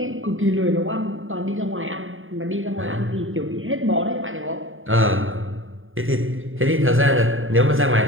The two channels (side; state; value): left; late; 0.59 ms